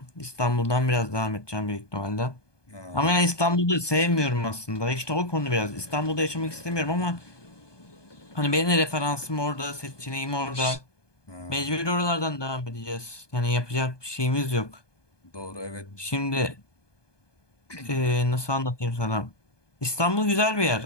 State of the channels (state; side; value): late; right; 1.2 ms